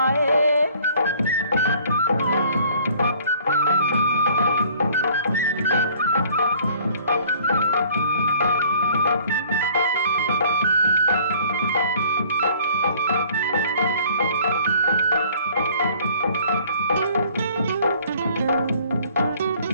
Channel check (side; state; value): both; inverted; correlation -0.55